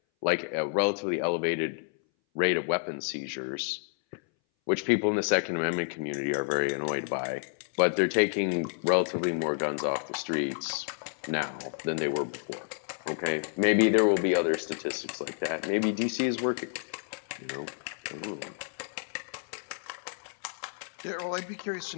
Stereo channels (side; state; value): right; silent; 58 dB below the other